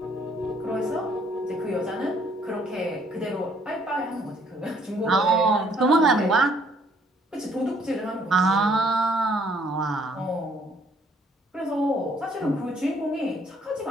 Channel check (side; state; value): both; normal; correlation 0.63